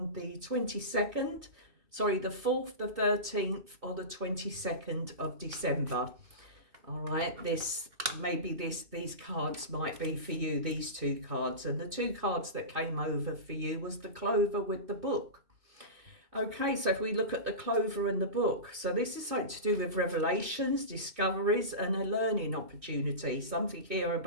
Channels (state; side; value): late; left; 2.6 ms